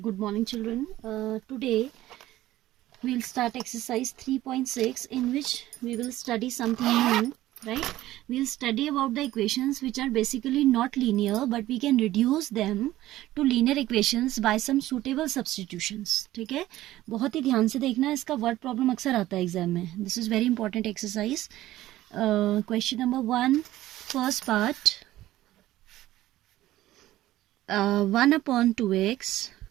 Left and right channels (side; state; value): left; quieter; 15.2 dB